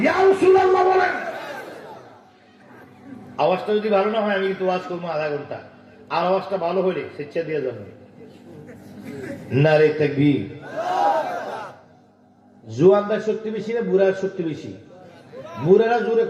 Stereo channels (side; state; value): both; identical; correlation 1.00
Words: ইয়া রাসূলুল্লাহ বলেন। আওয়াজটা যদি ভালো না হয় আমি কিন্তু ওয়াজ করবো আধা ঘন্টা, আর আওয়াজটা ভালো হলে স্বেচ্ছা দিয়ে যাবে। নারে তাকবীর। জুয়ানদার শক্তি বেশি না বুড়ার শক্তি বেশি? বুড়ারা জোরে